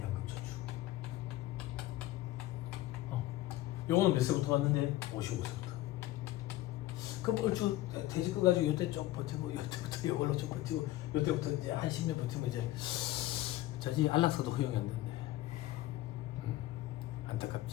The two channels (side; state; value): right; quieter; 16.1 dB